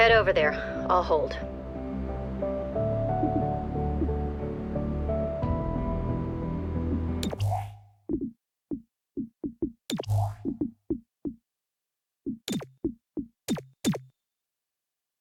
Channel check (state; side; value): identical; both; correlation 1.00